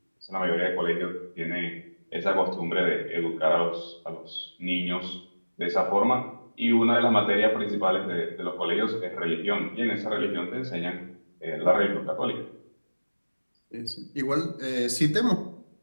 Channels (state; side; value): inverted; both; correlation -1.00